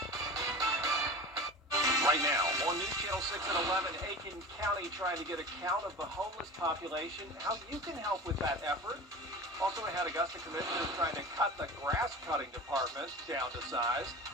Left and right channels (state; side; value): normal; both; correlation 0.33